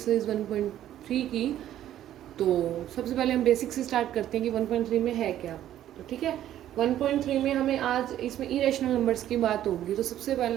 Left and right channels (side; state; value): left; quieter; 12.0 dB